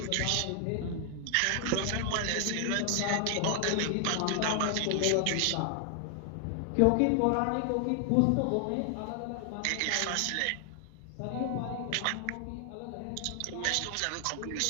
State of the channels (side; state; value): both; different; correlation 0.00